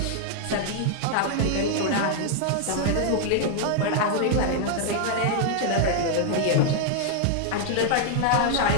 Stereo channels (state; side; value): different; both; correlation 0.00